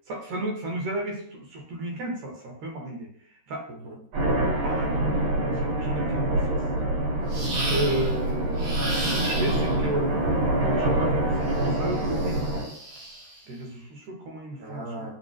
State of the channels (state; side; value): late; left; 13 ms